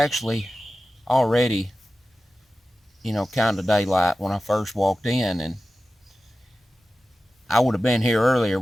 already, kind of daylight when I first walked in, and I would have been here earlier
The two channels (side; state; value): both; normal; correlation 0.95